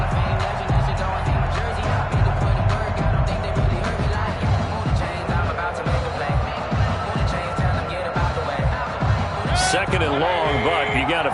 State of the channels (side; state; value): both; identical; correlation 1.00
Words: Second and long, but you got to